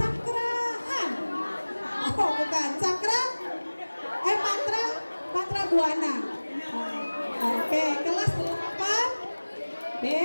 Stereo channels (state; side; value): inverted; both; correlation -1.00